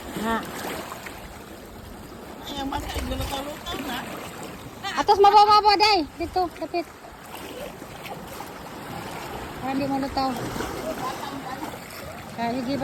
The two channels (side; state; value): both; identical; correlation 1.00